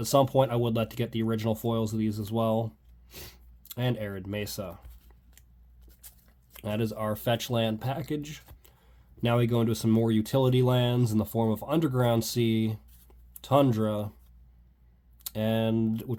some point I would like to get the original foils of these as well. And Arid Mesa. That is our fetch land package. Now we go into some more utility lands in the form of Underground Sea, Tundra, and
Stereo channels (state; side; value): identical; both; correlation 1.00